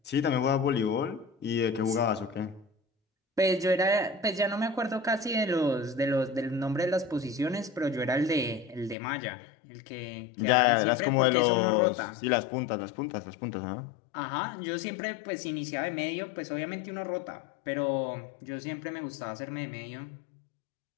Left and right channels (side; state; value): right; drops out; at 9.0 s